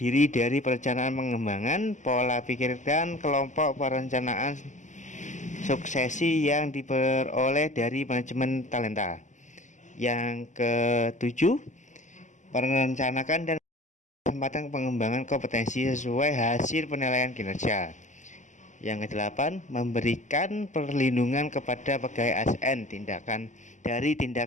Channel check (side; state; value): right; late; 0.35 ms